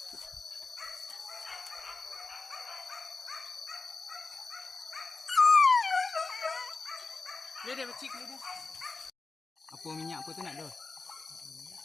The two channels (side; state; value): right; quieter; 4.0 dB